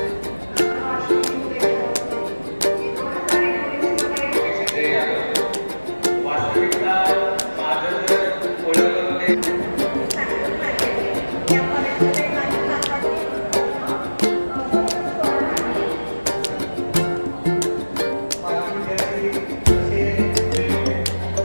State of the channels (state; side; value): inverted; both; correlation -1.00